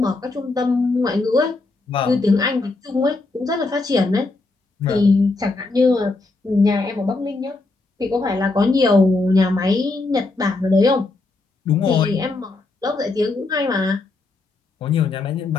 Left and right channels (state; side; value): quieter; right; 3.4 dB